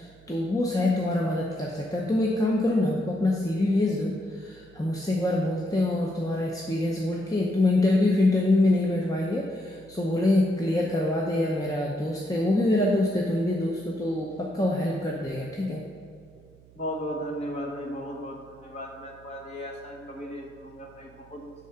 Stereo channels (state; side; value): noise; right; hum, 25 dB below the sound